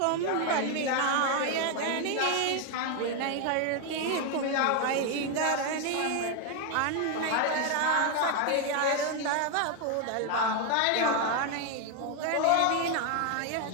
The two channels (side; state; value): both; different; correlation 0.01